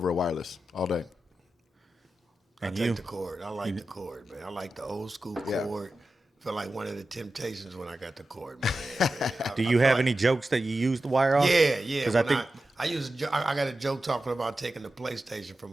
a wireless all day. I take the cord. I like the cord, man. I like the old school cord. Feel like one of the Temptations when I got the cord, man. Do you have any jokes that you use the wire on? Yeah. Because I think I got a joke talking about taking the PlayStation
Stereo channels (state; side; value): normal; both; correlation 0.92